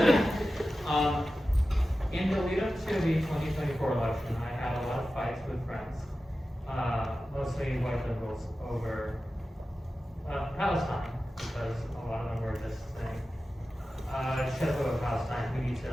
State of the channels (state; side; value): normal; both; correlation 0.94